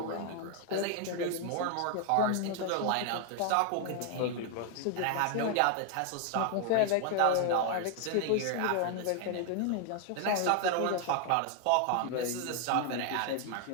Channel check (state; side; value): different; both; correlation 0.00